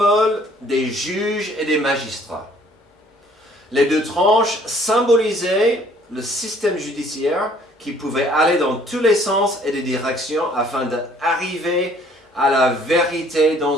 des juges et des magistrats. Les deux tranches symbolisaient le système judiciaire qui pouvait aller dans tous les sens et les directions afin d'arriver à la vérité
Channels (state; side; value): normal; both; correlation 0.59